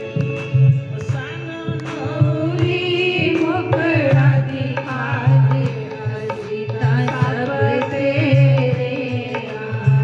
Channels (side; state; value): both; identical; correlation 1.00